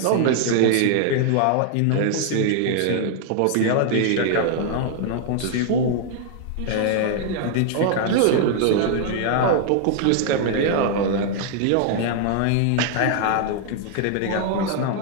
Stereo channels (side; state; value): both; different; correlation 0.00